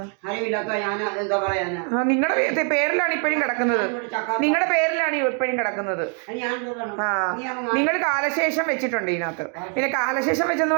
അറിവില്ലാത്ത ഞാൻ എന്താ പറയാനാ? നിങ്ങളുടെ പേരിലാണ് ഇപ്പോഴും കിടക്കുന്നത്. നിങ്ങളുടെ പേരിലാണ് ഇപ്പോഴും കിടക്കുന്നത്. നിങ്ങൾ കാലശേഷം വെച്ചിട്ടുണ്ട് ഇതിനകത്ത്. പിന്നെ കാലശേഷം വെച്ചെന്ന്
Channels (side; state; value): left; quieter; 39.9 dB